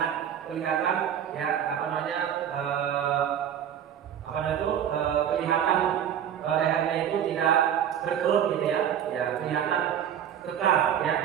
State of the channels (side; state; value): left; quieter; 9.4 dB